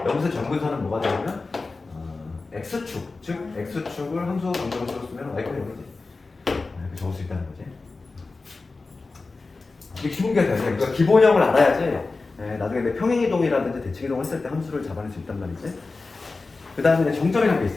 점근선은 뭐가 되냐면 x축, 즉 x축을 함수 방정을 써쓰면 y가 0이지. 이렇게 적을 수 있다는 거지. 이게 기본기가 돼요. 그러니까 기본형을 알아야지 나중에 내 평행이동이라든지 대칭이동 했을 때 함수를 잡아낼 수 있단 말이지. 그 다음에 정점이라는 게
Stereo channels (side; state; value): right; quieter; 3.8 dB